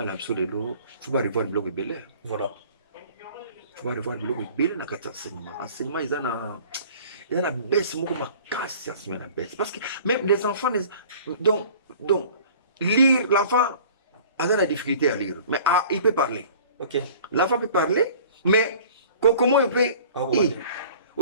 là biso lelo faut pas revoir le blog belé. Voilà. Faut pas revoir le blog belé na kata enseignement. Enseignement il y a la baisse beaucoup ma casse la baisse parce que même les enfants donc lire l'enfant a de la difficulté à lire mais il peut parler. OK. L'enfant peut parler mais comment il peut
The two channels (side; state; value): both; inverted; correlation -0.47